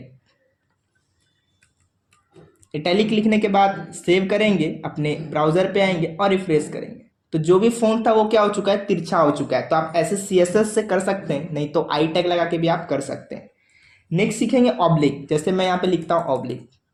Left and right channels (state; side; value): identical; both; correlation 1.00